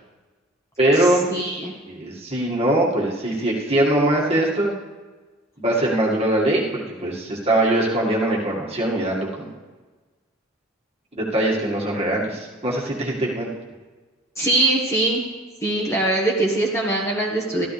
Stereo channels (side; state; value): both; normal; correlation 0.45